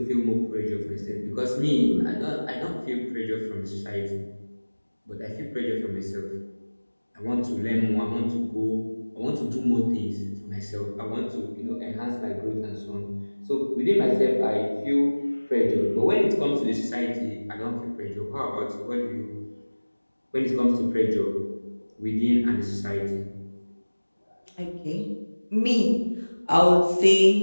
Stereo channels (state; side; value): inverted; both; correlation -1.00